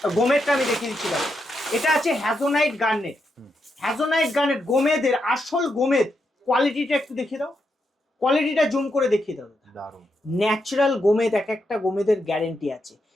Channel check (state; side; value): normal; both; correlation 0.82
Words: গোমেদটা আমি দেখিয়ে দিচ্ছি। দেখো এটা আছে হ্যাজোনাইট গার্নেট। হ্যাজোনাইট গার্নেট গোমেদের আসল গোমেদ। কোয়ালিটিটা একটু দেখিয়ে দাও, কোয়ালিটিটা জুম করে দেখিয়ে দাও। ন্যাচারাল গোমেদ, এক একটা গোমেদের গ্যারেন্টি আছে।